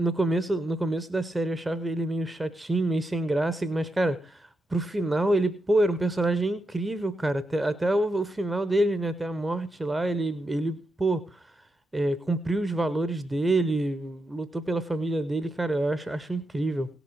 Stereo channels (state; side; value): normal; both; correlation 0.85